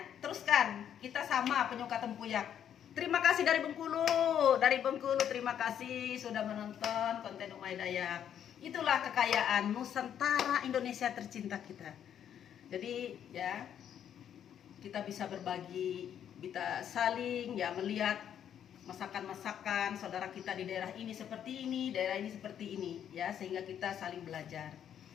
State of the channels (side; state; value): right; quieter; 9.4 dB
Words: Teruskan, kita sama penyuka tempuyak. Terima kasih dari Bengkulu. Dari Bengkulu terima kasih sudah menonton konten Umay Dayak. Itulah kekayaan Nusantara Indonesia tercinta kita. Jadi ya kita bisa berbagi, kita saling ya melihat masakan-masakan saudara kita di daerah ini seperti ini, daerah ini seperti ini ya, sehingga kita saling belajar.